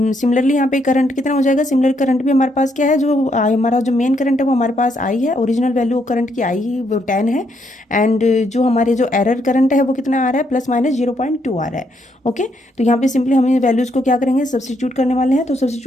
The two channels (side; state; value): both; normal; correlation 0.75